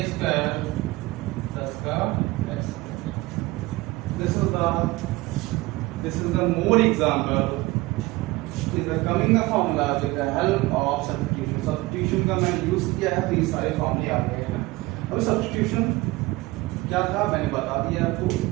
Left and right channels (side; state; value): left; quieter; 20.8 dB